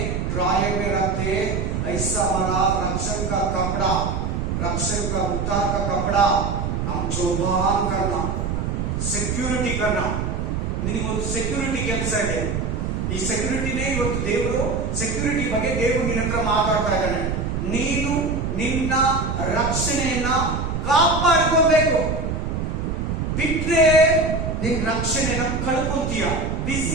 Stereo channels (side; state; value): right; noise; rumble, 2 dB below the sound